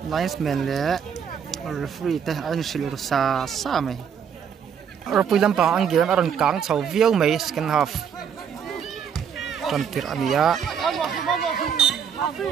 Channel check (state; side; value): quieter; left; 7.6 dB